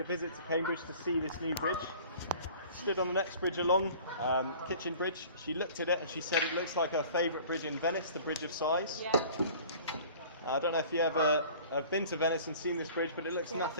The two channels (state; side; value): inverted; both; correlation -0.47